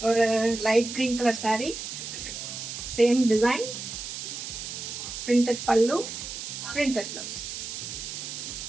ஒரு light green colour sari. Same design, printed pallu, printed blouse.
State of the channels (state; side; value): noise; right; hiss, 7 dB below the sound